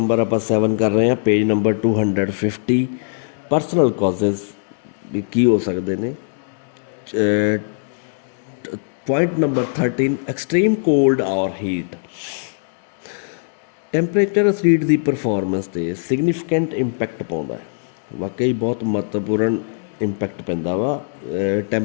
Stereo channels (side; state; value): right; silent; 65 dB below the other